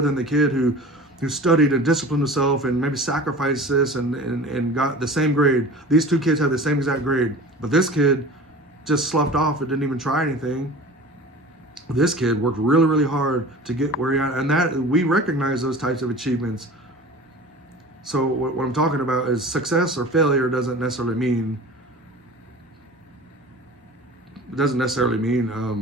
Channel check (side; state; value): both; normal; correlation 0.39